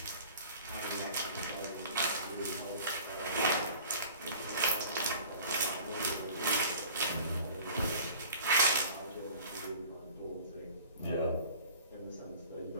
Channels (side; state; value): both; inverted; correlation -0.45